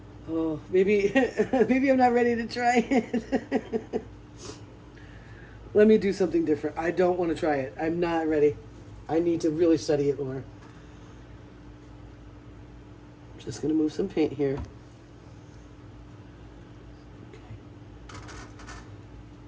Oh, maybe I'm not ready to try it. Let me do something different. I don't want to try it. I'm not ready. I need to really study it more. Just going to move some paint here. Okay.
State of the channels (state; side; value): identical; both; correlation 1.00